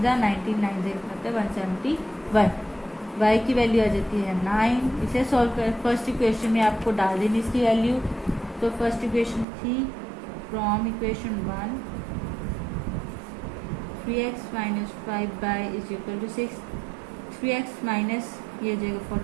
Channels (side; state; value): left; drops out; at 9.5 s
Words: जा, 19 9 से मतलब 171, y की वैल्यू आ जाती है 9। इसे सॉल्व कर, फर्स्ट इक्वेशन में आपको डाल देनी इसकी वैल्यू। तो फर्स्ट इक्वेशन थी from equation 1, 3x minus 5y is equal to 6, 3x minus ये जाएगा